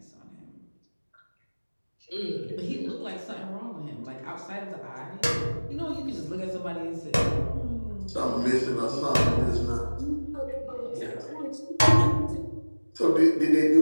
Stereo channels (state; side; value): inverted; both; correlation -1.00